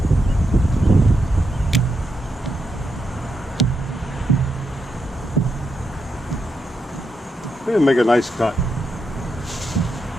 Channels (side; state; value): both; normal; correlation 0.83